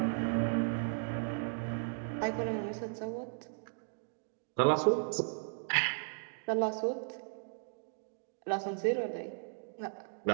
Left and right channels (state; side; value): silent; left; digital silence